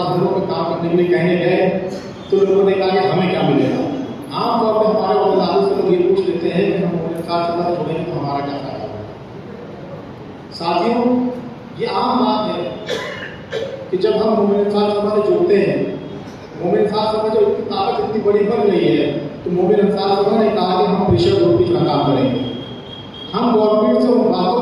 घरों में काम करने के लिए कहने गए, तो लोगों ने कहा कि हमें क्या मिलेगा। आमतौर पर हमारे वज़ारों से लोग ये पूछ लेते हैं कि हम मोमिन साहब सभा छोड़ेंगे तो हमारा क्या फायदा होगा। साथियों, ये आम बात है कि जब हम मोमिन साहब सभा से जुड़ते हैं, मोमिन साहब सभा जब इतनी ताकत इतनी बड़ी बन गई है, तो मोमिन साहब सभा ने कहा कि हम प्रेशर ग्रुप की तरह काम करेंगे। हम गवर्नमेंट से उन बातों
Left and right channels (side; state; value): both; identical; correlation 1.00